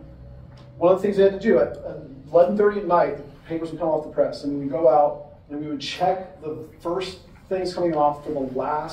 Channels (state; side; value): identical; both; correlation 1.00